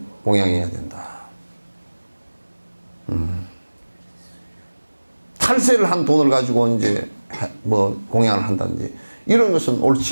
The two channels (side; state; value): both; inverted; correlation -1.00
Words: 공양이어야 된다. 탈세를 한 돈을 가지고 이제 뭐 공양을 한다든지 이런 것은